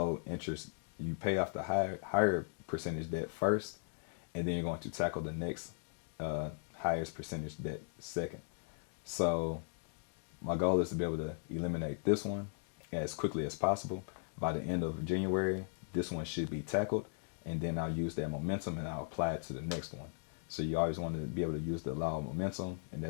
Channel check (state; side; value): silent; right; digital silence